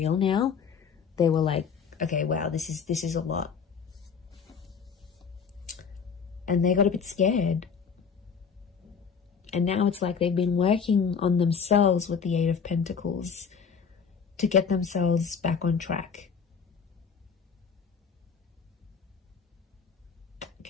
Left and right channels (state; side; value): quieter; right; 6.2 dB